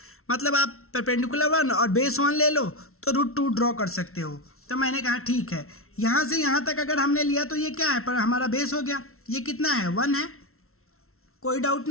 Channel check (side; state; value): right; late; 0.62 ms